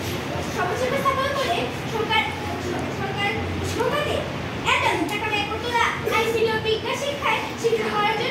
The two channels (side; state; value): both; identical; correlation 1.00